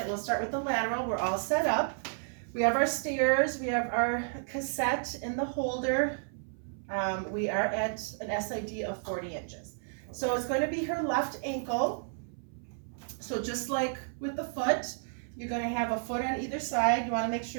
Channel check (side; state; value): left; silent; 57 dB below the other